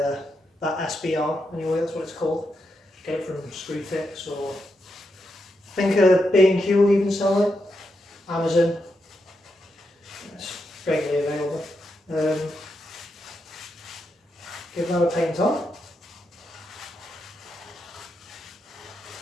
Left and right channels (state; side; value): normal; both; correlation 0.84